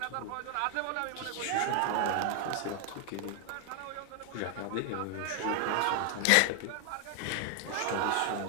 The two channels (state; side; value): different; both; correlation 0.00